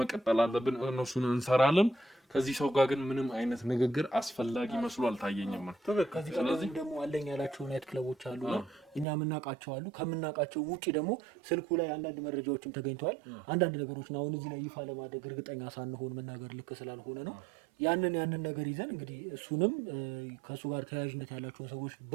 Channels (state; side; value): drops out; left; at 9.1 s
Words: አለብን። እነሱን እንሰራለን። ከዚህ ሰው ጋር ግን ምንም አይነት ንግግር አስፈላጊ መስሎ አልታየኝም። ስለዚህ ደግሞ አለኝ ያላቸው ናይት ክለቦች አሉ፣ እኛ የምናውቃቸው አሉ። ከምናውቃቸው ውጪ ደግሞ ስልኩ ላይ አንዳንድ መረጃዎችም ተገኝተዋል። አንዳንድ ነገሮችን አሁን እዚህ ላይ ይፋ ለማድረግ እርግጠኛ ሳንሆን መናገር ልክ ስላልሆነ ነው። ያንን ነገር ይዘን እንግዲህ እሱንም ከሱ ጋር ተያያዥነት ያላቸውን ሰዎች